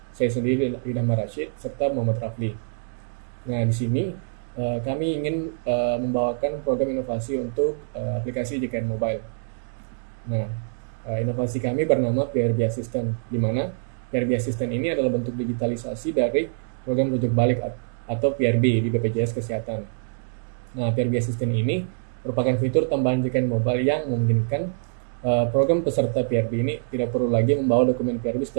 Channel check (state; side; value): silent; left; digital silence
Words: saya sendiri Idham Rashid, serta Muhammad Rafli. Nah, di sini kami ingin membawakan program inovasi untuk aplikasi JKN Mobile. Nah, inovasi kami bernama PRB Assistant, di mana PRB Assistant ini adalah bentuk digitalisasi dari program rujuk balik atau PRB di BPJS Kesehatan. Nah, PRB Assistant ini merupakan fitur tambahan JKN Mobile yang memungkinkan program peserta PRB ini tidak perlu lagi membawa dokumen PRB